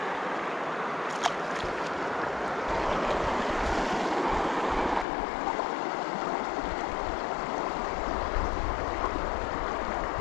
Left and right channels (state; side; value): drops out; right; at 5.1 s